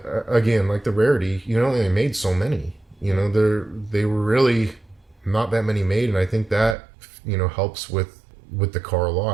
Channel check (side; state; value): left; drops out; at 6.8 s